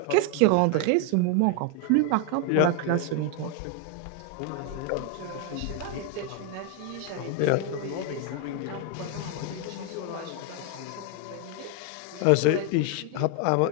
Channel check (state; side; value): different; both; correlation 0.01